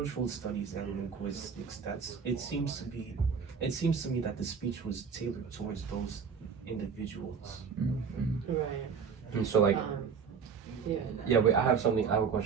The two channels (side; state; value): left; quieter; 6.3 dB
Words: studies, and linguistics. It seems to me that the speech was tailored towards those individuals. Right. And so like Yeah. yeah, wait, I have a